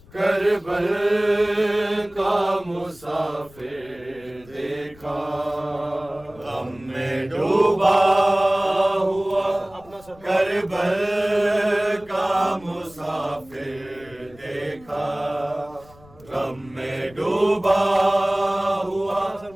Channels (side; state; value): left; noise; rumble, 25 dB below the sound